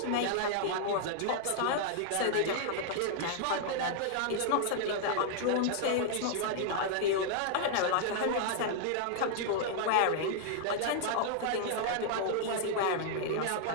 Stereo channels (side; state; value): both; different; correlation -0.01